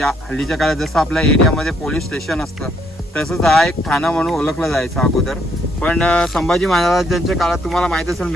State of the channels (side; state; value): both; normal; correlation 0.70